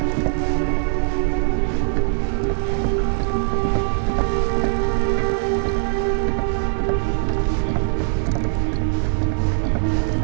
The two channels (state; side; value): silent; left; 65 dB below the other